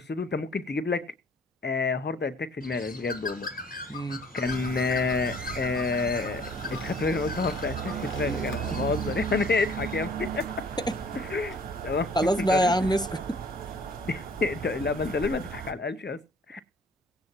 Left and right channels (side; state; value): both; normal; correlation 0.55